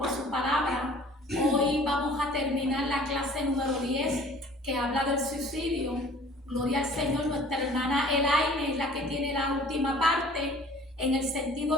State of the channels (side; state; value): both; normal; correlation 0.50